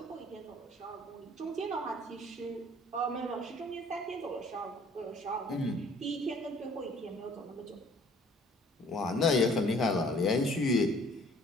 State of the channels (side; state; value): both; normal; correlation 0.56